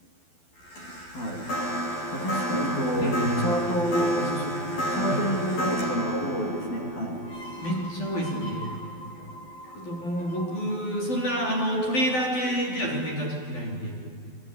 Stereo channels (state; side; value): late; right; 12 ms